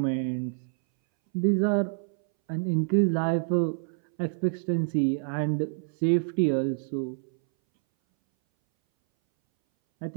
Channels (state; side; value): silent; left; 60 dB below the other